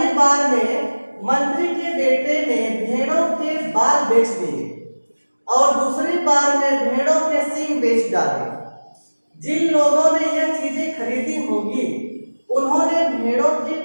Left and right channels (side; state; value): both; inverted; correlation -1.00